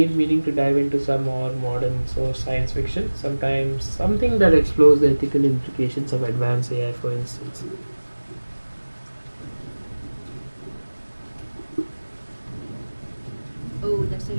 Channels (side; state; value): both; inverted; correlation -1.00